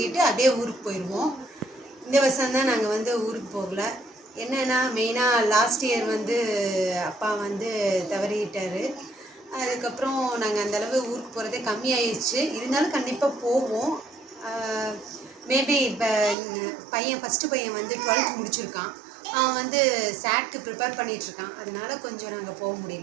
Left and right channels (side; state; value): left; drops out; at 16.4 s